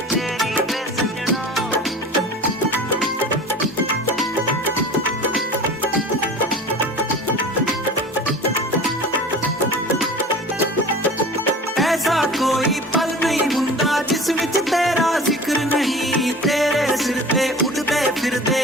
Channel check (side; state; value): both; normal; correlation 0.39